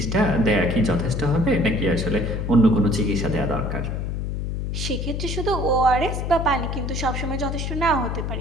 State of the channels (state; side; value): noise; left; hum, 3 dB below the sound